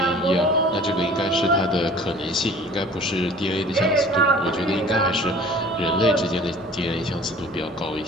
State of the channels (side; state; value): both; normal; correlation 0.47